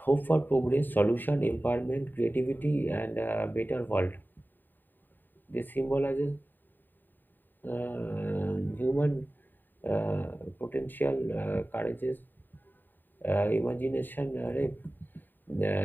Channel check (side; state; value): right; late; 0.091 ms